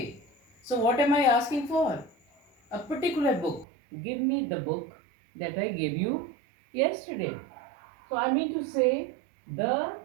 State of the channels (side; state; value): left; drops out; at 3.7 s